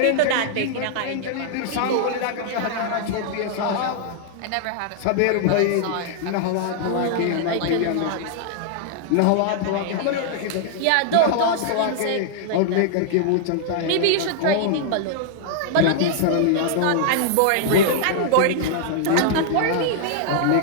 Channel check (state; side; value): different; both; correlation -0.01